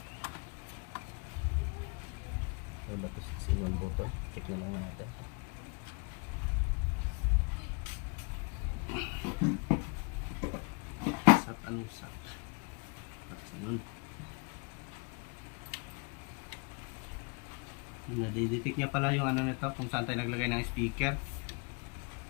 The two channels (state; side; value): quieter; right; 33.3 dB